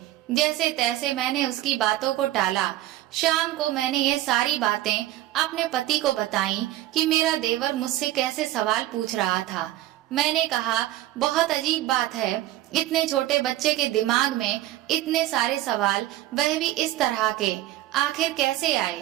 जैसे तैसे मैंने उसकी बातों को टाला। शाम को मैंने यह सारी बातें अपने पति को बताई कि मेरा देवर मुझसे कैसे सवाल पूछ रहा था। मैंने कहा, बहुत अजीब बात है, इतने छोटे बच्चे के दिमाग में इतने सारे सवाल, वह भी इस तरह के, आखिर कैसे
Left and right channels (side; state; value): left; quieter; 14.9 dB